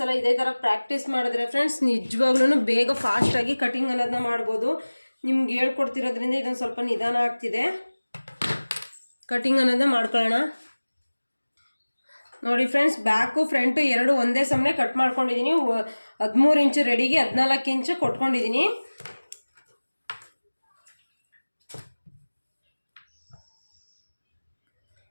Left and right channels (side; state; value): both; inverted; correlation -1.00